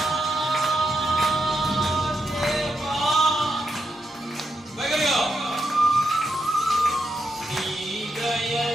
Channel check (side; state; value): both; normal; correlation 0.83